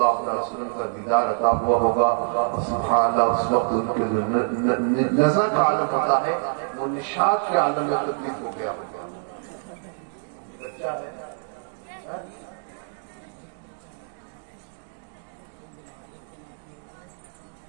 علیہ وسلم کا دیدار عطا ہوا ہوگا، اور سبحان اللہ اس وقت ان کے جو نظر کا عالم ہوتا ہے وہ نشاط کے عالم میں تبدیل ہو گیا ہوگا۔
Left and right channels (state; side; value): silent; left; digital silence